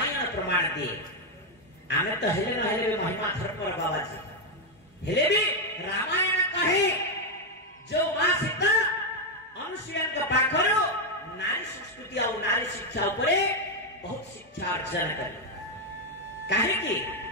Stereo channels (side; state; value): both; normal; correlation 0.02